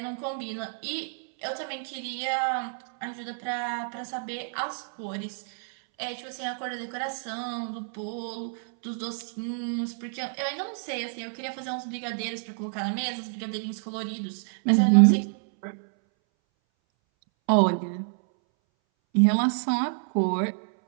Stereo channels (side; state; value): left; silent; 59 dB below the other